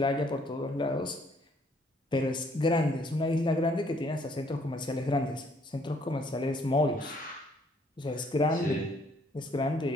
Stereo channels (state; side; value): normal; both; correlation 0.64